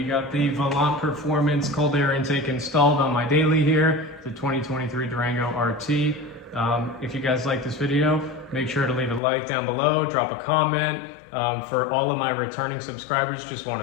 got the Volant Performance cold air intake installed on my daily here, the 2023 Durango RT. If you guys like this video, make sure to leave a like down below, drop a comment. For all of my returning subscribers, just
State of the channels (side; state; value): right; drops out; at 9.2 s